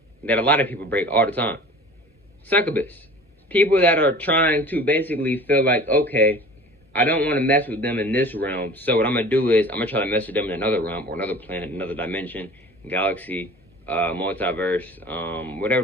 that a lot of people break all the time. Succubus. People that are trying to basically feel like, okay, I don't want to mess with them in this realm, so what I'm going to do is I'm going to try to mess with them in another realm or another planet, another dimension, galaxy, multiverse, whatever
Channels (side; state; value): both; normal; correlation 0.42